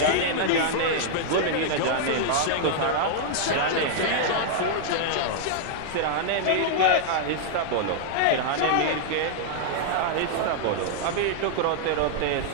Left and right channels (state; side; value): different; both; correlation -0.01